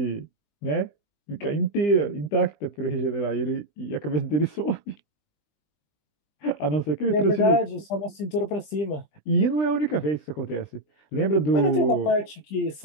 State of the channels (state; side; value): late; right; 20 ms